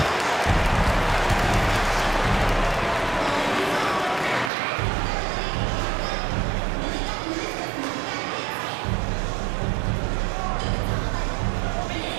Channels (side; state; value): left; drops out; at 4.5 s